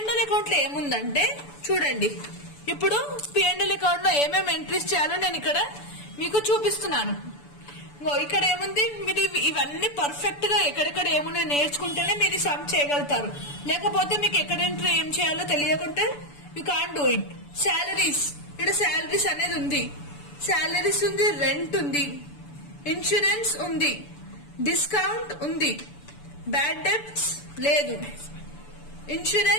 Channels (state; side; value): late; right; 6.9 ms